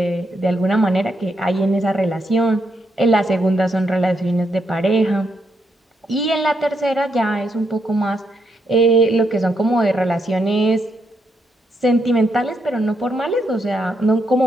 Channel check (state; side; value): normal; both; correlation 0.79